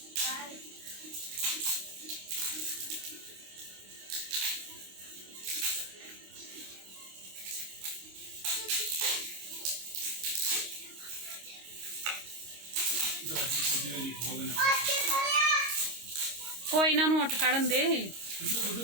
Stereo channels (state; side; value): late; left; 26 ms